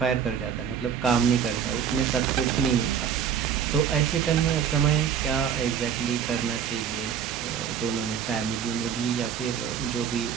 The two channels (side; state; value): left; quieter; 8.0 dB